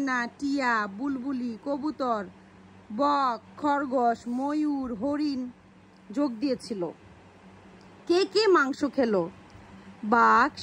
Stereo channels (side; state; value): both; identical; correlation 1.00